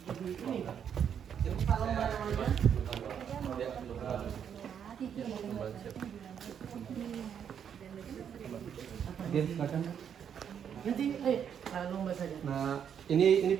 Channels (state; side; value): quieter; left; 8.3 dB